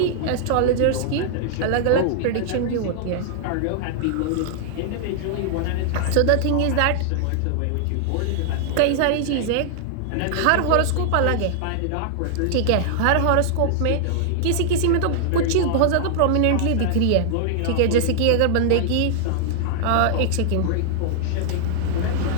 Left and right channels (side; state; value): both; different; correlation -0.01